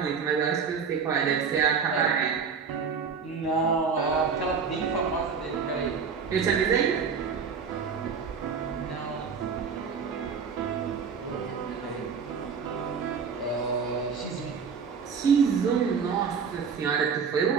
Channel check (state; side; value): quieter; left; 6.0 dB